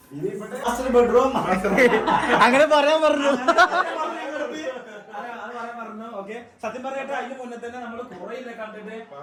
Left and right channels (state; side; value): identical; both; correlation 1.00